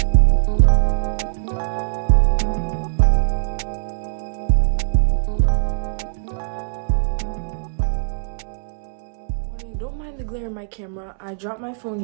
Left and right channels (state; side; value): silent; left; 65 dB below the other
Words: Don't mind the glare in my camera. I dropped my phone